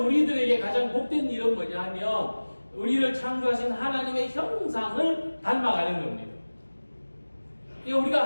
우리들에게 가장 복된 일은 뭐냐 하면 우리를 창조하신 하나님의 형상을 닮아가는 겁니다.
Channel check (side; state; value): both; inverted; correlation -1.00